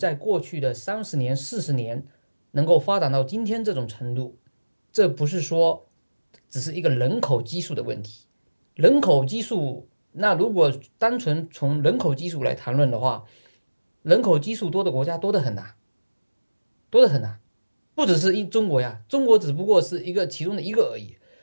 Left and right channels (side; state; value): both; inverted; correlation -1.00